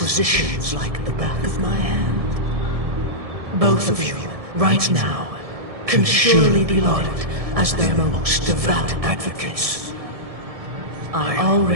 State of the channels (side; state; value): left; late; 1.7 ms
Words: like the back of my hand. Both of you, right now, can surely be lauded as their most devout advocates. I